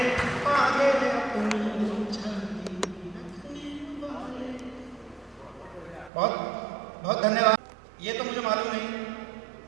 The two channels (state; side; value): drops out; left; at 6.1 s